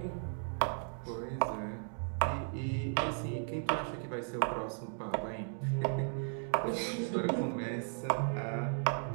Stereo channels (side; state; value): left; silent; 54 dB below the other